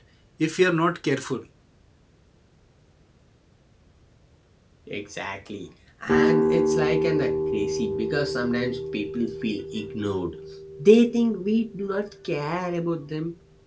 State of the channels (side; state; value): both; identical; correlation 1.00